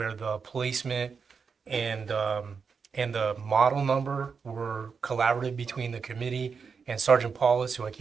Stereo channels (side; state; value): left; quieter; 5.7 dB